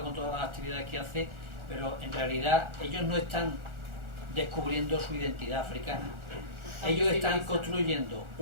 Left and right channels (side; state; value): left; late; 1.4 ms